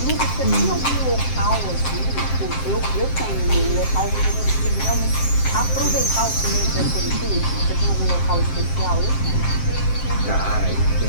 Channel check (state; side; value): late; right; 7.6 ms